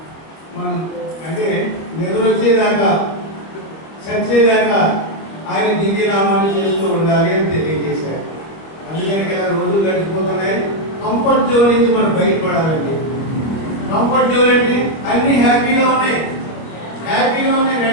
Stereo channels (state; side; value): late; right; 26 ms